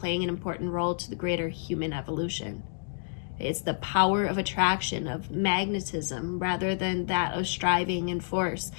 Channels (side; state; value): right; silent; digital silence